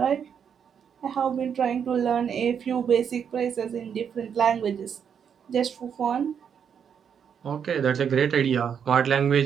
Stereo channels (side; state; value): left; quieter; 7.6 dB